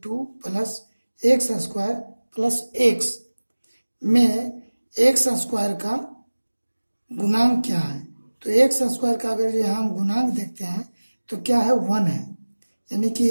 2 plus x square plus x में एक्स स्क्वायर का गुणांक क्या है। तो एक्स स्क्वायर का अगर जो हम गुणांक देखते हैं तो क्या है, 1 है। यानी कि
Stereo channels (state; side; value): inverted; both; correlation -1.00